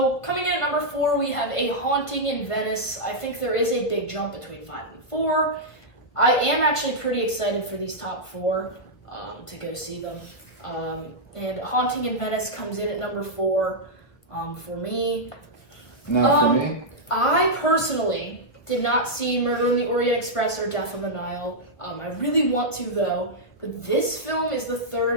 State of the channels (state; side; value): late; right; 1.5 ms